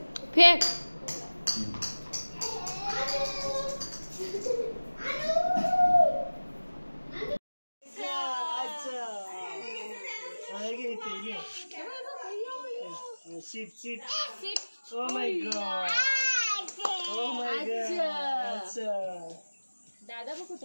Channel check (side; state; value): both; inverted; correlation -1.00